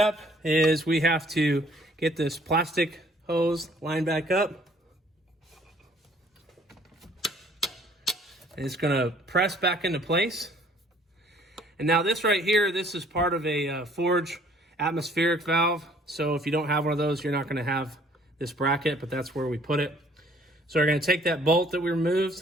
is we have to get this plastic hose lined back up. And it's going to press back into place. And now this right here, this is part of a forge atmospheric valve. So if you don't have one of those, you're not going to have this bracket, but that's where we put it. So we're going to take that bolt that we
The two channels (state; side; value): normal; both; correlation 0.59